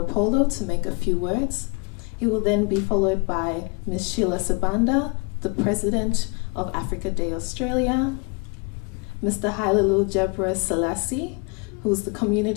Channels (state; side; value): quieter; right; 32.6 dB